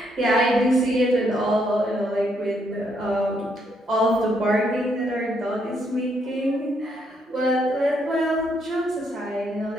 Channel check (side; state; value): both; normal; correlation 0.74